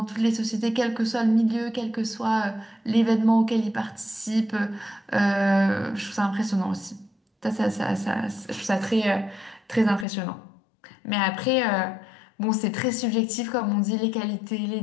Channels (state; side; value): drops out; right; at 10.1 s